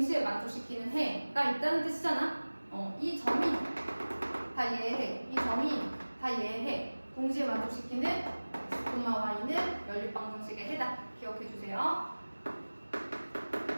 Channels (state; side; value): inverted; both; correlation -1.00